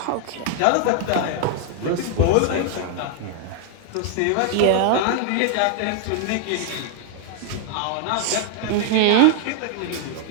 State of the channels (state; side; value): different; both; correlation 0.00